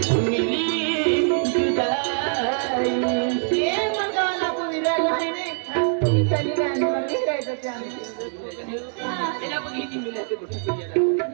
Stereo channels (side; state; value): left; silent; 63 dB below the other